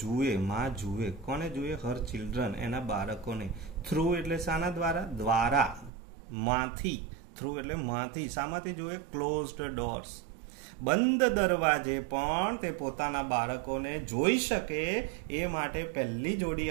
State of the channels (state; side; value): drops out; left; at 5.9 s